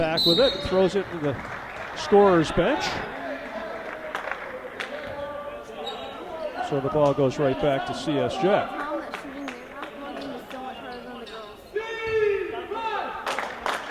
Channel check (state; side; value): identical; both; correlation 1.00